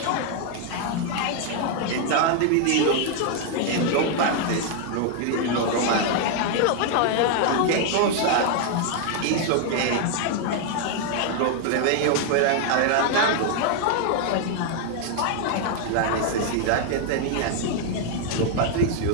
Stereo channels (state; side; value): different; both; correlation 0.00